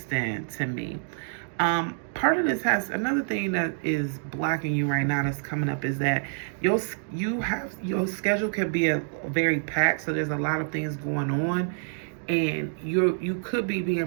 to me. Part of this has another thing that is blocking you right now that's coming up is that your schedule can be a very packed, so there's a lot of things going on, and you could be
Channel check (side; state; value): left; silent; digital silence